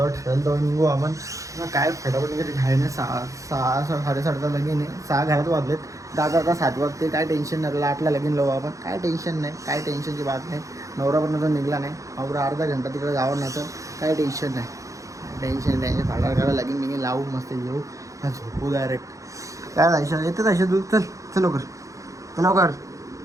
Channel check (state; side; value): late; left; 0.16 ms